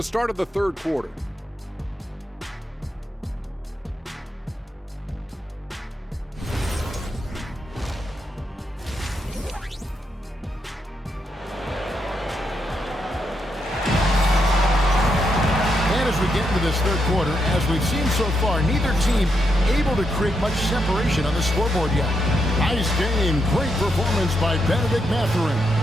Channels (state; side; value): normal; both; correlation 0.81